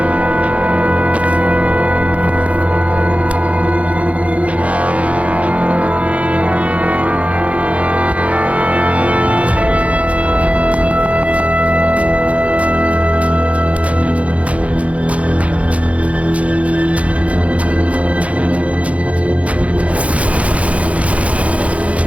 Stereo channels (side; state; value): left; late; 0.065 ms